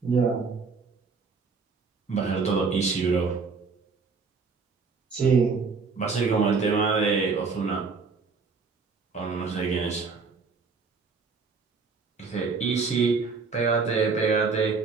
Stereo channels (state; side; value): quieter; left; 4.8 dB